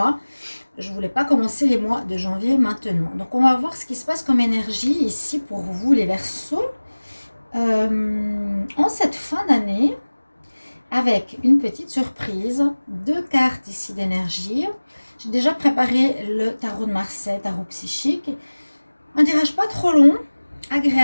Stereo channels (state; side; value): inverted; both; correlation -1.00